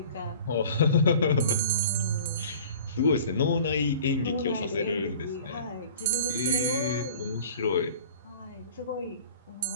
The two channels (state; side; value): inverted; both; correlation -0.44